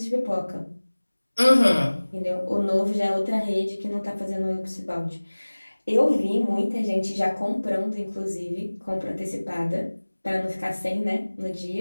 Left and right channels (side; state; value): both; inverted; correlation -1.00